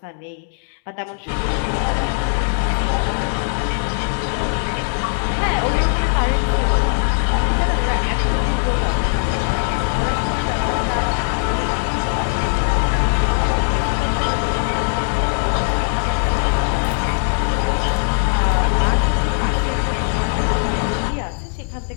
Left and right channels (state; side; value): silent; right; 66 dB below the other